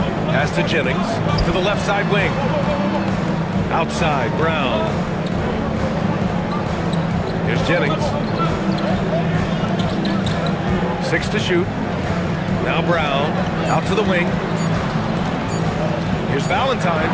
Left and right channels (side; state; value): both; identical; correlation 1.00